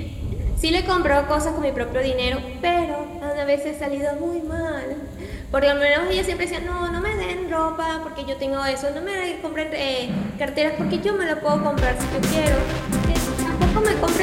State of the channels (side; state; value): both; identical; correlation 1.00